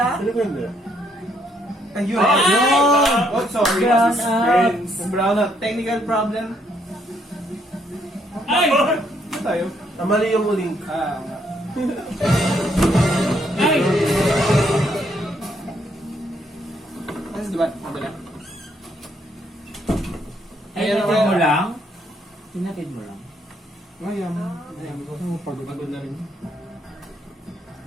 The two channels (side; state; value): both; normal; correlation 0.71